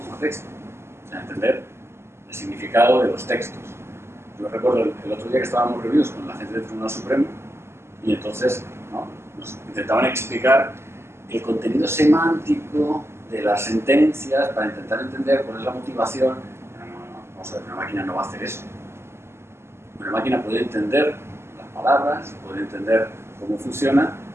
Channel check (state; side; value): late; left; 0.12 ms